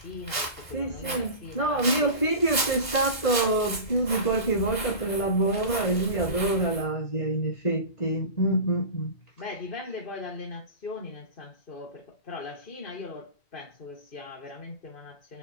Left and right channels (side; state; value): right; late; 2.0 ms